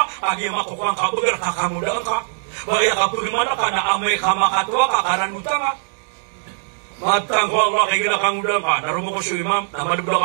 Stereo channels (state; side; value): silent; left; 62 dB below the other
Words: agi makukuang ka beger ka kamu dang ka baya kap gimana ka na amay ka makatwa ka karan utang ka matang ko Allah kay gira kangu dang ka narumo ko su imam na madublo